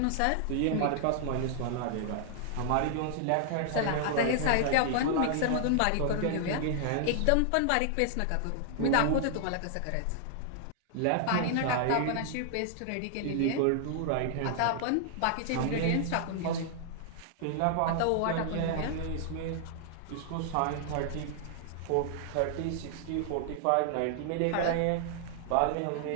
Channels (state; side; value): different; both; correlation -0.01